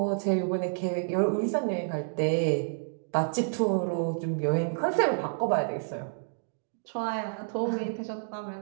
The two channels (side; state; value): left; silent; digital silence